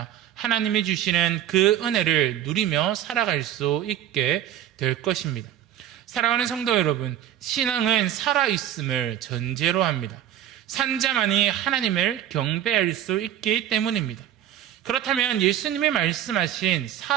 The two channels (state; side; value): quieter; left; 11.3 dB